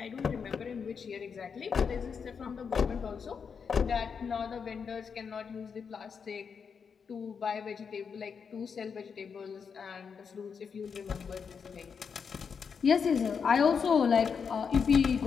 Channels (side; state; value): right; quieter; 6.2 dB